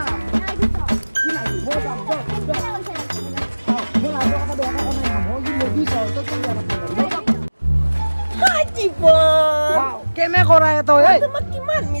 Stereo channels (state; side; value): inverted; both; correlation -1.00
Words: নাই দিবি কি নাই মই যাম মই ৰাইজৰ কথা বেয়া কথা নাই মই কি নদী যাওঁ তই কি বেয়া কথা জীৱন কেনে কৰাই তই এই তোমাক কিমান